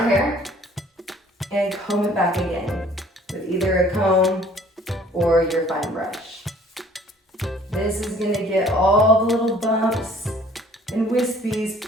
hair, and comb it back again with either a comb or your fine brush. This is gonna get all the little bumps and wispies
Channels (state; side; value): normal; both; correlation 0.55